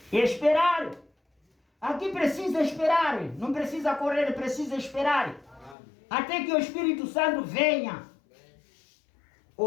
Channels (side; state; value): right; drops out; at 5.8 s